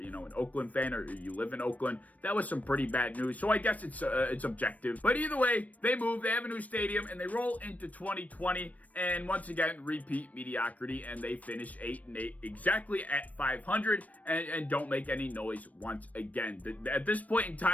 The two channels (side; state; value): right; late; 0.071 ms